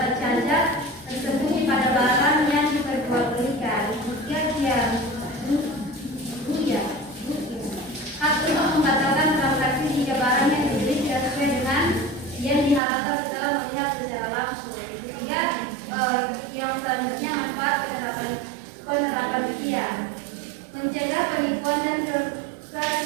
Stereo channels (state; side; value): drops out; left; at 12.8 s